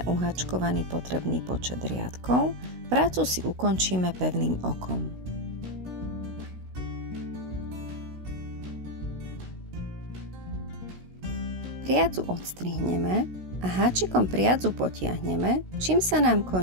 uháčkovaný potrebný počet riadkov, prácu si ukončíme pevným okom. Priadzu odstrihneme a háčikom priadzu potiahneme, čím sa nám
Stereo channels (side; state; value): left; late; 16 ms